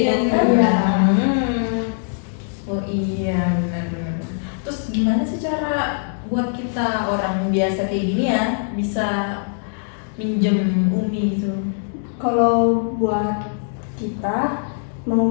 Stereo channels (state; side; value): silent; right; digital silence